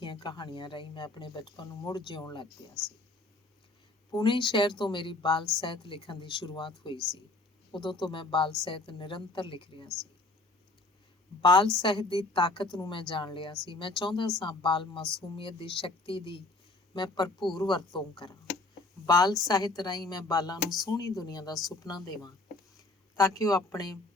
ਕਹਾਣੀਆਂ ਰਾਹੀਂ ਮੈਂ ਆਪਣੇ ਬਚਪਨ ਨੂੰ ਮੁੜ ਜਿਉਣ ਲੱਗ ਪਿਆ ਸੀ। ਪੁਣੇ ਸ਼ਹਿਰ ਤੋਂ ਮੇਰੀ ਬਾਲ ਸਾਹਿਤ ਲਿਖਣ ਦੀ ਸ਼ੁਰੂਆਤ ਹੋਈ ਸੀ। ਉਦੋਂ ਤੋਂ ਮੈਂ ਬਾਲ ਸਾਹਿਤ ਨਿਰੰਤਰ ਲਿਖ ਰਿਹਾ ਸੀ। ਬਾਲ ਸਾਹਿਤ ਦੀ ਤਾਕਤ ਨੂੰ ਮੈਂ ਜਾਣ ਲਿਆ ਸੀ। ਮੈਂ ਚਾਹੁੰਦਾ ਸਾਂ ਬਾਲ ਮਾਸੂਮੀਅਤ ਦੀ ਸ਼ਕਤੀ ਦੀ ਮੈਂ ਭਰਪੂਰ ਵਰਤੋਂ ਕਰਾਂ। ਬਾਲ ਸਾਹਿਤ ਰਾਹੀਂ ਮੈਂ ਬਾਲਾਂ ਨੂੰ ਸੋਹਣੀ ਦੁਨੀਆ ਦਾ ਸੁਪਨਾ ਦੇਵਾਂ, ਤਾਂ ਕਿ ਉਹ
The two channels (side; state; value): right; quieter; 3.0 dB